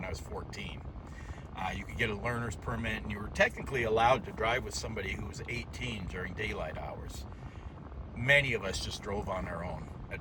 I was 14. You could get a learner's permit, and you were technically allowed to drive with somebody who was 18 during daylight hours. Many of us just drove on our own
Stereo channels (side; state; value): both; identical; correlation 1.00